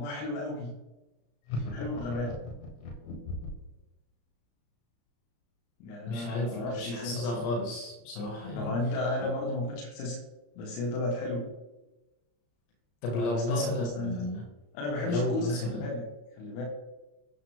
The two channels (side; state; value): right; late; 34 ms